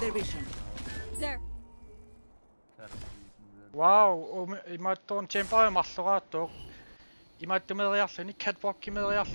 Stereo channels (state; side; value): inverted; both; correlation -1.00